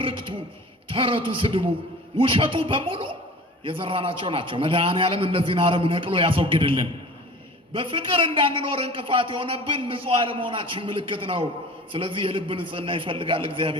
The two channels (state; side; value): normal; both; correlation 0.41